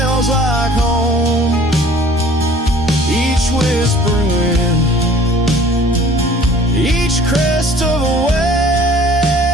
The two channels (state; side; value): normal; both; correlation 0.51